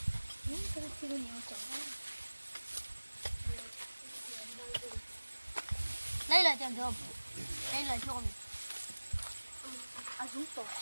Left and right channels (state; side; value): inverted; both; correlation -1.00